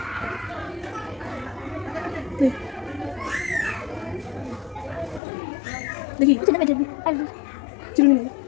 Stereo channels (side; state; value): right; drops out; at 5.2 s